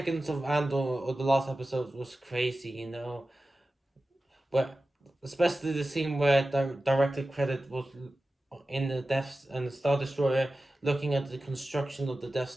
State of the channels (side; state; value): both; normal; correlation 0.95